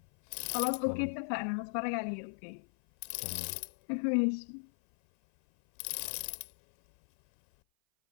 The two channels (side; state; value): right; silent; 53 dB below the other